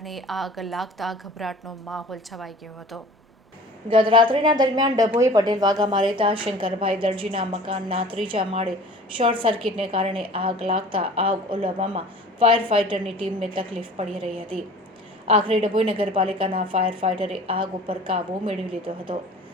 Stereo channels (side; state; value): both; normal; correlation 0.44